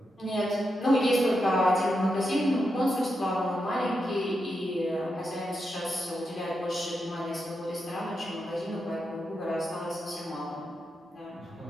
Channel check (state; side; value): normal; both; correlation 0.86